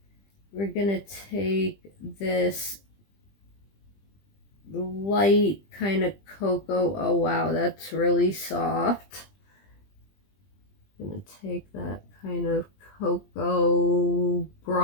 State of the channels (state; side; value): late; right; 20 ms